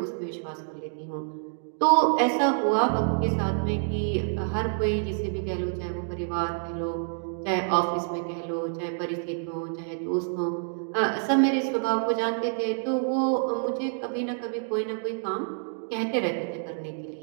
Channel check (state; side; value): silent; left; digital silence